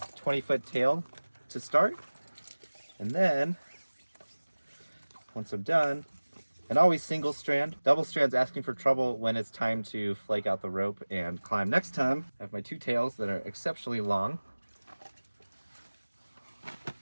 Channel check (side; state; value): both; inverted; correlation -1.00